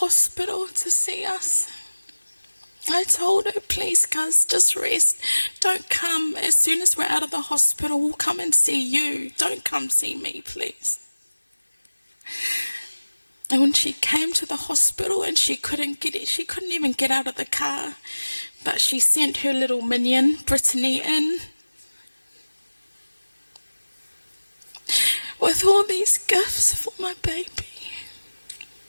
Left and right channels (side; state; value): both; inverted; correlation -1.00